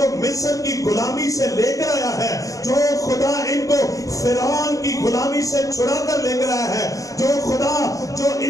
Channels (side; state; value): right; late; 0.16 ms